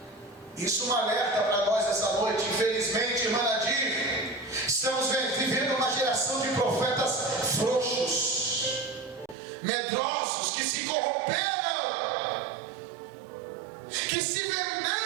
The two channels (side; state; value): left; drops out; at 9.3 s